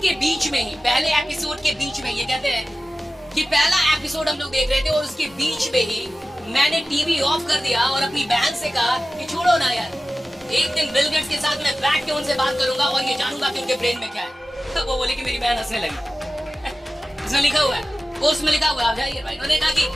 बीच में ये कहते हैं कि पहला एपिसोड हम लोग देख रहे थे और उसके बीच में ही मैंने टीवी ऑफ कर दिया और अपनी बहन से कहा कि छोड़ो ना यार, एक दिन बिल गेट्स के साथ मैं बैठ के उनसे बात करूंगा और ये जानूंगा कि उनके ब्रेन में क्या है। तो वो बोले कि मेरी बहन हंसने लगी। इसमें लिखा हुआ है, पोस्ट में लिखा हुआ है, आप जाइए भाई। उन्होंने कहा कि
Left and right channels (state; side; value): normal; both; correlation 0.95